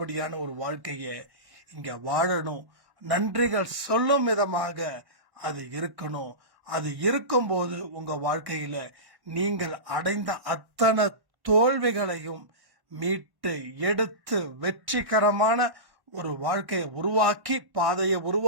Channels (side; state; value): left; late; 1.1 ms